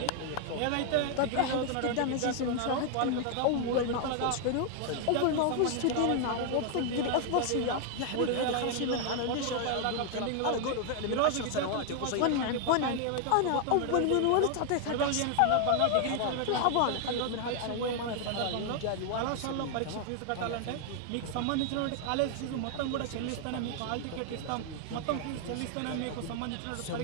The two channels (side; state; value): both; different; correlation 0.00